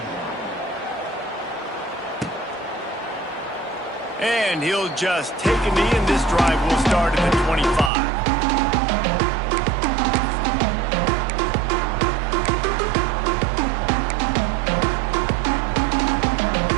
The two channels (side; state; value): left; drops out; at 7.9 s